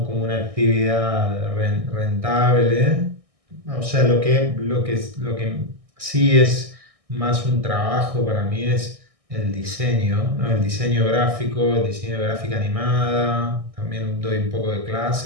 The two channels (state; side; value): late; left; 1.6 ms